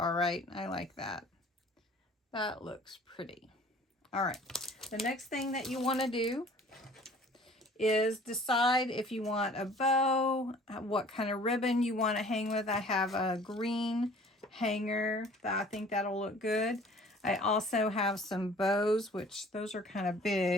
right. I like that. That looks pretty. All right. The next thing that you want to do is decide if you want a bow, what kind of ribbon you want to hang with. I have a green hanger that I think that'll look good. I also have some bows, which those are kind of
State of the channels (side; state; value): both; normal; correlation 0.50